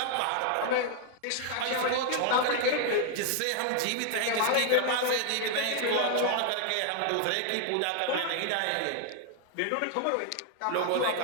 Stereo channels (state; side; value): different; both; correlation 0.00